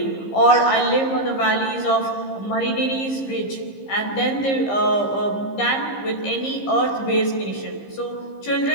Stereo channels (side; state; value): right; late; 15 ms